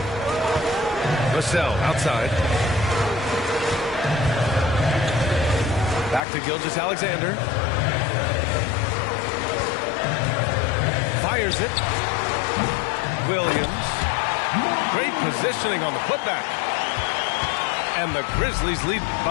Vassell outside. Back to Gilgeous-Alexander. Fires it. Williams. Great positioning on the putback. And the Grizzlies lead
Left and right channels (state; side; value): drops out; right; at 6.2 s